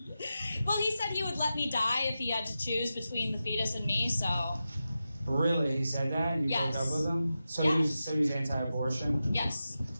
well, he said he would let me die if he had to choose between the fetus and me, so... Really? He said that? You Yes. broke up with him? So Yes. he's anti-abortion? Yes.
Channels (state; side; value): inverted; both; correlation -0.92